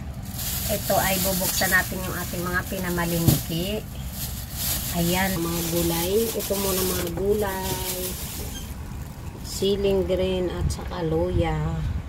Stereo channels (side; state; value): both; identical; correlation 1.00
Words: Ito ay bubuksan natin yung ating mga pinamalingki. Ayan, mga gulay. Ito muna mga gulay. Siling green at saka luya.